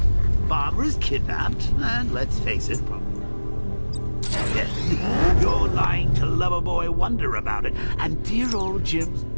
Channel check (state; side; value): inverted; both; correlation -1.00